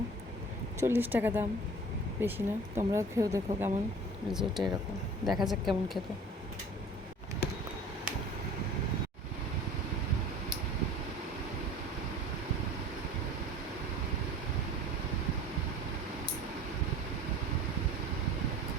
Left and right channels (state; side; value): normal; both; correlation 0.44